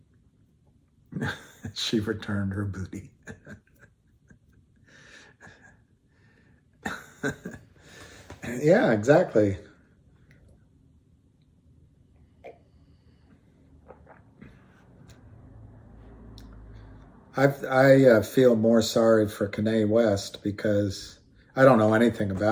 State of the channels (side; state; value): both; identical; correlation 1.00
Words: She returned her booty. Yeah, exactly. I feel more sorry for Kanye West because I don't know anything